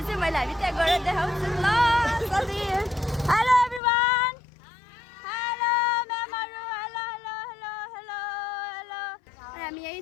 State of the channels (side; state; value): right; drops out; at 3.8 s